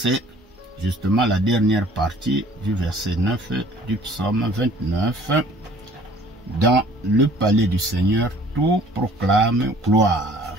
justement la dernière partie du verset 9 du psaume 29. Dans le palais du Seigneur, tout proclame gloire.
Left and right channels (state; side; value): normal; both; correlation 0.54